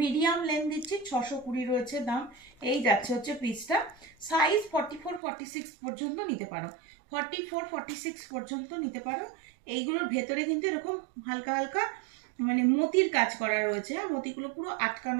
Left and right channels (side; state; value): left; drops out; at 5.2 s